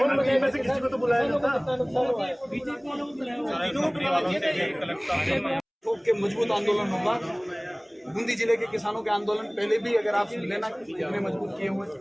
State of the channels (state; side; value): identical; both; correlation 1.00